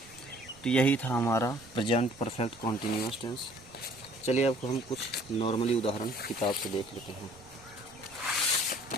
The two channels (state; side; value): noise; right; rumble, 25 dB below the sound